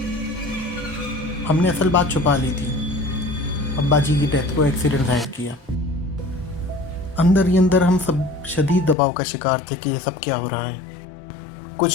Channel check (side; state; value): right; drops out; at 9.0 s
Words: हमने असल बात छुपा ली थी। अब्बा जी की डेथ को एक्सीडेंट जाहिर किया। अंदर ही अंदर हम सब शदीद दबाव का शिकार थे कि ये सब क्या हो रहा है।